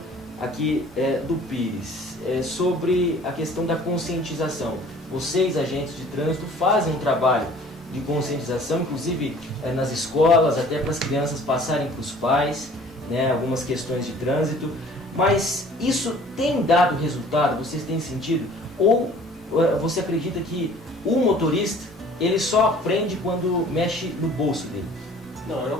aqui do Pires, sobre a questão da conscientização. Vocês, agentes de trânsito, fazem um trabalho de conscientização, inclusive nas escolas, até para as crianças passarem para os pais, né, algumas questões de trânsito, mas isso tem dado resultado? Vocês têm sentido? Ou você acredita que o motorista ele só aprende quando mexe no bolso dele? Não, eu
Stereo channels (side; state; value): both; normal; correlation 0.50